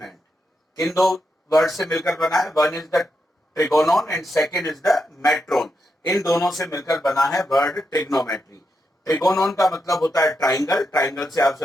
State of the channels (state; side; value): normal; both; correlation 0.84